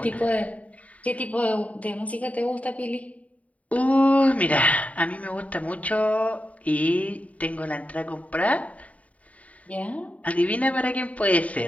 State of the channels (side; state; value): right; late; 0.069 ms